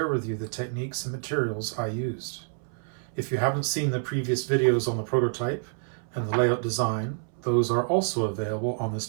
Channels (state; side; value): silent; left; 60 dB below the other